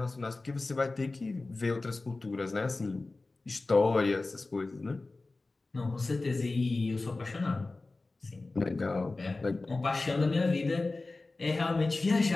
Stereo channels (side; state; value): right; quieter; 3.3 dB